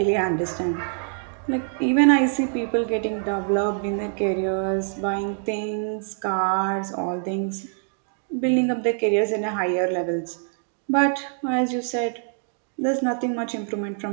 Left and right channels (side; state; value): left; silent; 62 dB below the other